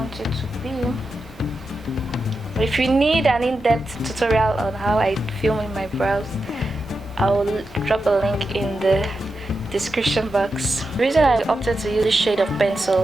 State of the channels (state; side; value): normal; both; correlation 0.88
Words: it to be. If you need an in-depth tutorial on how I film my brows, I will drop a link in the description box. The reason I opted to use this shade of